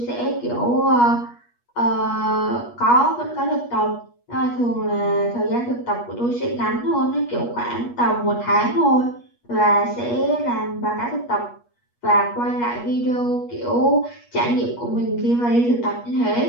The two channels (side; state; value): right; late; 8.4 ms